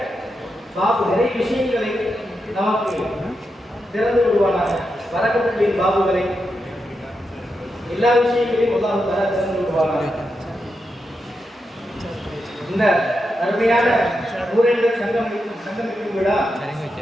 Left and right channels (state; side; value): normal; both; correlation 0.86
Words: விஷயங்களை நமக்கு திறந்து விடுவானாக. வரக்கத்துகளின் பாபுகளை எல்லா விஷயங்களையும் அல்லாஹ் தஆலா திறந்து விடுவானாக. இந்த அருமையான ஊரேந்தர் சங்கமிக்கும் விழா